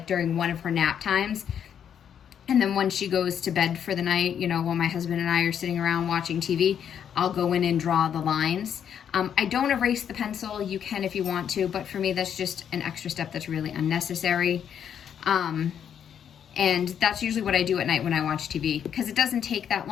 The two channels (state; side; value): quieter; right; 8.6 dB